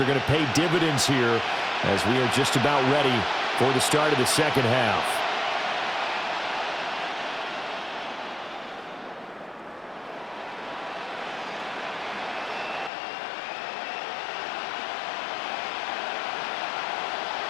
going to pay dividends here as we are just about ready for the start of the second half.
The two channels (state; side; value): drops out; right; at 12.9 s